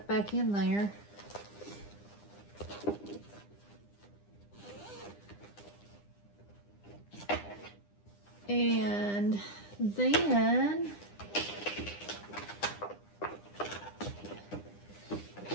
back in there. And then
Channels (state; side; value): late; right; 9.9 ms